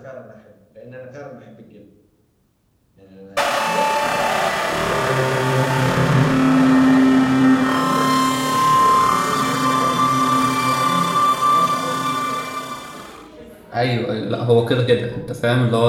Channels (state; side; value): identical; both; correlation 1.00